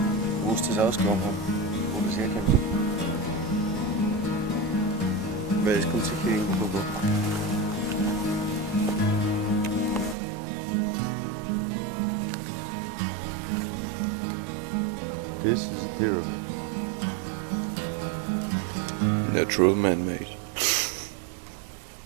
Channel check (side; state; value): left; drops out; at 10.2 s